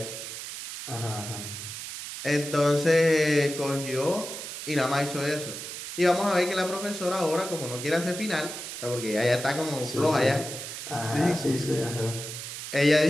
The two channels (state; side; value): noise; right; hiss, 8 dB below the sound